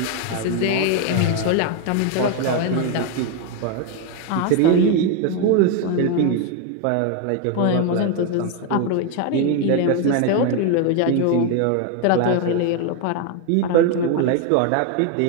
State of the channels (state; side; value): different; both; correlation 0.01